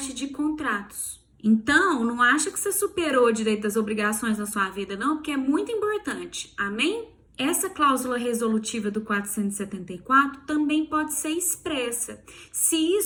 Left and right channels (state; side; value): identical; both; correlation 1.00